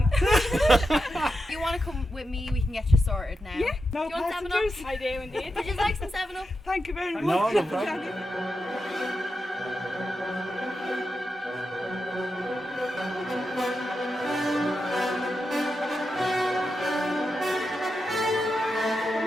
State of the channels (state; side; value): normal; both; correlation 0.88